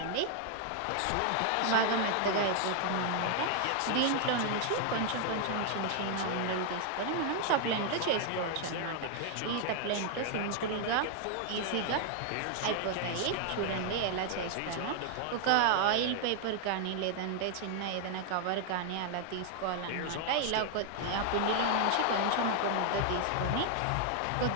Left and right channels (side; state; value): both; different; correlation 0.00